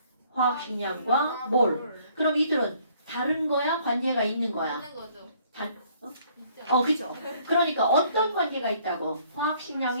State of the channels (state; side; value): inverted; both; correlation -0.62